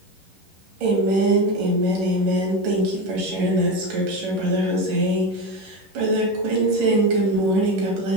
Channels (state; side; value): late; left; 11 ms